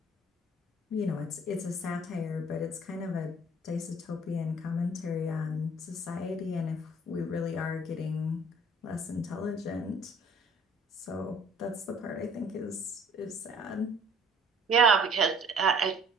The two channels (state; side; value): normal; both; correlation 0.53